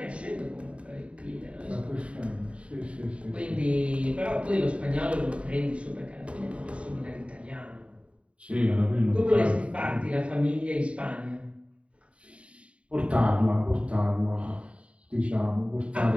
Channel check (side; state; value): left; late; 0.062 ms